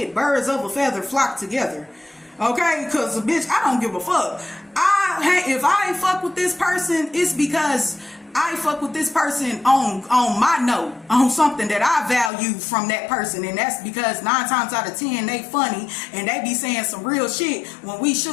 Birds of a feather flock together. Okay, because bitch, I don't give a fuck. If I fuck with this person, it's because I fuck with this person on my note, on something that I value from that person, and that's because 9 times out of 10 they funny and they be saying some real shit when we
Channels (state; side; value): drops out; right; at 12.3 s